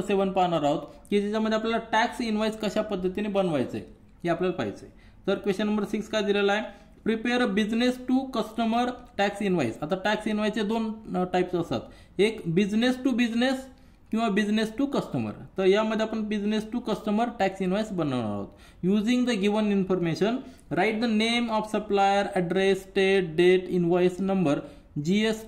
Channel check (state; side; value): identical; both; correlation 1.00